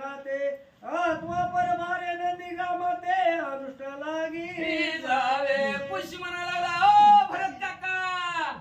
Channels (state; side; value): identical; both; correlation 1.00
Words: आत्मा परभारे नंदी ग्रामाते अनुष्ठ लागी जावे. पुष्य म्हणा लागला, ओ भरत काका